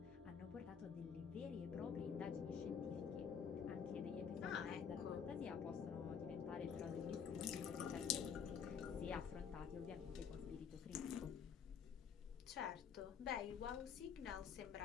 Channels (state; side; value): quieter; right; 7.1 dB